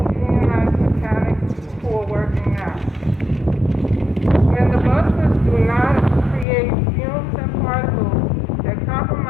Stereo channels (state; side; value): drops out; right; at 6.5 s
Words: unionized mechanics who are working now. When the buses do not create fumes and particles that